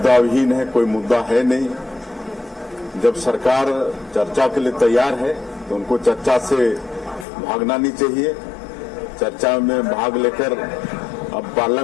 विहीन है, कोई मुद्दा है नहीं। जब सरकार चर्चा के लिए तैयार है तो उनको चर्चा से भागना नहीं चाहिए। चर्चा में भाग लेकर अब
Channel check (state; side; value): drops out; right; at 7.2 s